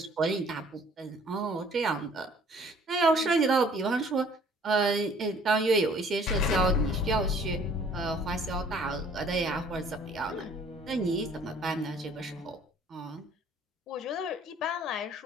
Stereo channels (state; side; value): normal; both; correlation 0.55